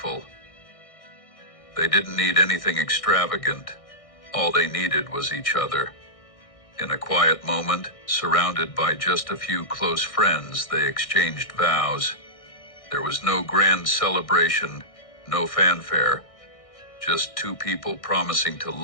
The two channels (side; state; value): right; late; 1.6 ms